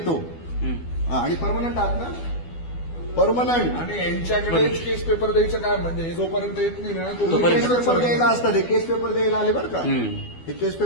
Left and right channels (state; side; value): late; right; 12 ms